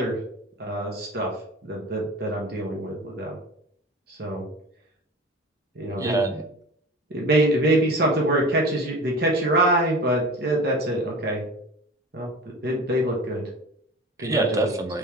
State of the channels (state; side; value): normal; both; correlation 0.36